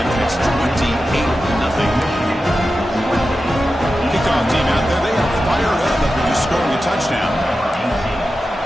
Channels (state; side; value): normal; both; correlation 0.92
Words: and it's 28-0. Kickoff team out there, they are fired up after just scoring a touchdown.